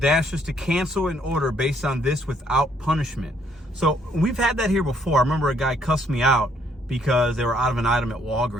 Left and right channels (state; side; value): normal; both; correlation 0.68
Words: to cancel an order based on this without punishment. So we've had that here before. I remember a guy cussed me out because they were out of an item at